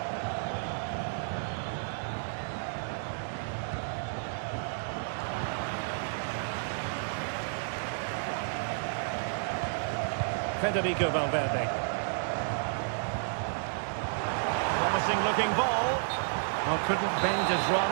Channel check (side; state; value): left; silent; digital silence